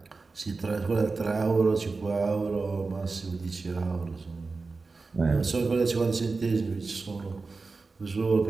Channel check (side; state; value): left; quieter; 4.0 dB